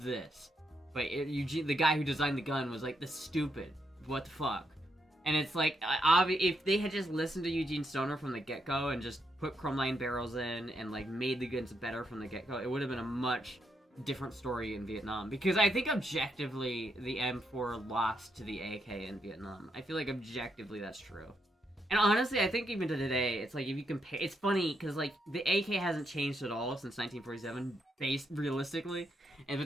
this. But Eugene, the guy who designed the gun, was like, "This stupid. What the fuck?" And it's like, if they had just listened to Eugene Stoner from the get-go and just put chromeline barrels in and, like, made the guns better from the get-go, it would have been a much different story in Vietnam. Because I think objectively, the M4 lost to the AK in Vietnam. I feel like objectively that's true. And honestly, I think even to today, it's like, if you compare... It's funny, because, like, the AK hasn't changed at all since 1947, realistically.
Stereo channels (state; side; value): normal; both; correlation 0.79